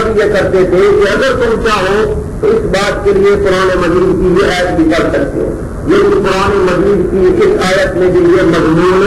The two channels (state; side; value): identical; both; correlation 1.00